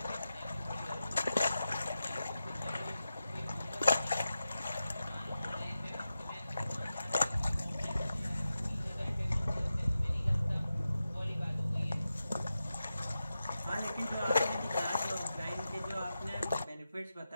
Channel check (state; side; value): inverted; both; correlation -0.91